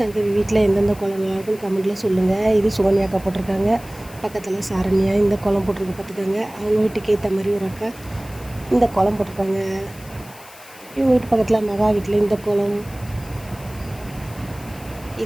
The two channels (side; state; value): left; noise; hiss, 20 dB below the sound